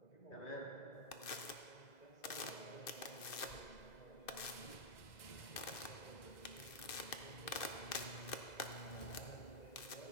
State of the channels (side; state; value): right; late; 2.0 ms